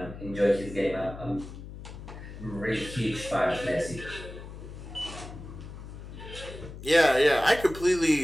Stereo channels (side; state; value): left; noise; hum, 12 dB below the sound